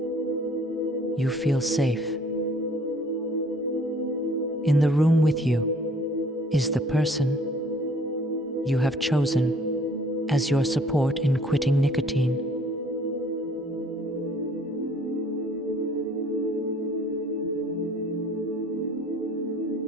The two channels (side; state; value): both; normal; correlation 0.56